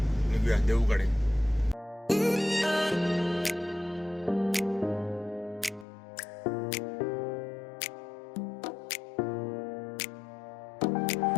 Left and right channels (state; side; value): drops out; right; at 5.9 s